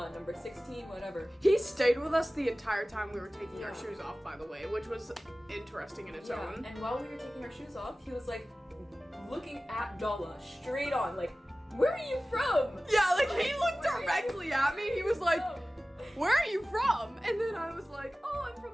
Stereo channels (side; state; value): both; normal; correlation 0.97